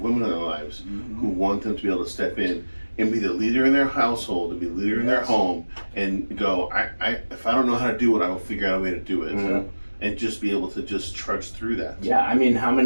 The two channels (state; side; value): inverted; both; correlation -1.00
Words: in their lives who want them to be able to step in and be the leader in their household, and be the leader in their home, and go, if I don't know how to do it, I will figure out a way to do it, and just be able to just trudge through that. Yeah, I mean, how